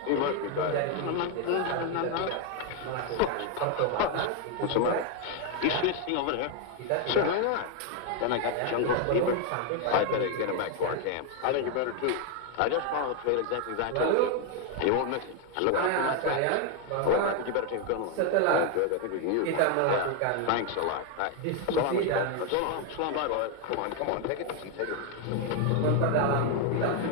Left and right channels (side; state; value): both; different; correlation 0.01